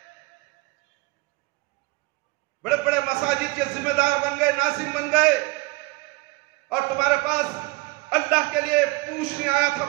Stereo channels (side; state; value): left; quieter; 24.2 dB